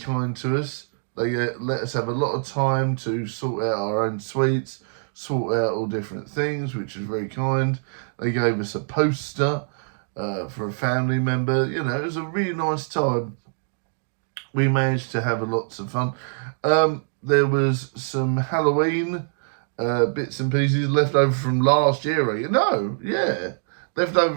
to us. They let us have a lot of time to sort out our own sweets, sort out all different things, which was very kind. They gave us a poster for a family member. It was a really nice time. We managed to have lots of fun. There was some Halloween bits and pieces left over from last year. Left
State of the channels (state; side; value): silent; left; digital silence